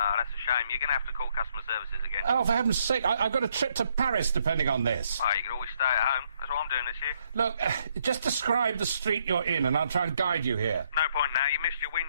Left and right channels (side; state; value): both; inverted; correlation -0.71